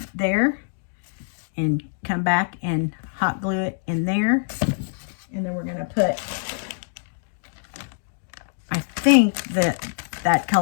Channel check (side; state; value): right; silent; digital silence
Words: there and come back and hot glue it in there. And then we're going to put, I think that